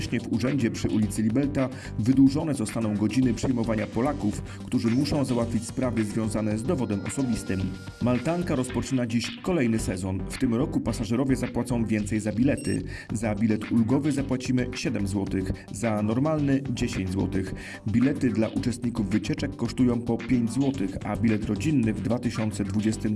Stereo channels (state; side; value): identical; both; correlation 1.00